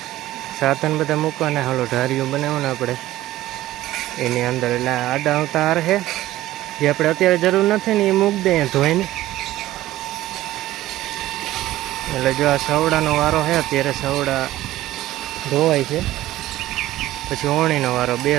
સાધન બધા મૂકવાના. હાલો ઢારીઓ બનાવવાના આપણે એની અંદર. એટલે આડા આવતા હાર છે, જે આપણે અત્યારે જરૂર નથી ને એ મૂકી દઈએ ધોઈને. એટલે જો આ સવડાનો વારો છે, અત્યારે સવડા ધોવાય છે, પછી ઓણીનો વારો.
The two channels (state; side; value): quieter; left; 15.3 dB